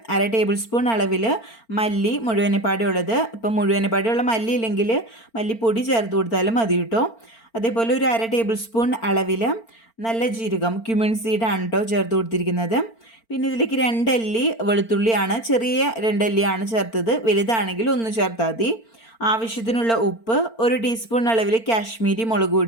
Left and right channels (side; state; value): right; late; 4.4 ms